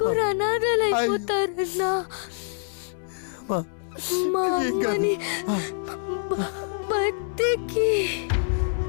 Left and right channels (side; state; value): right; silent; 61 dB below the other